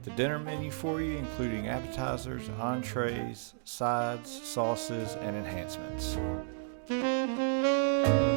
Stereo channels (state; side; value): silent; left; digital silence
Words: the dinner menu for you, including appetizers, entrees, sides, sauces, and enhancements.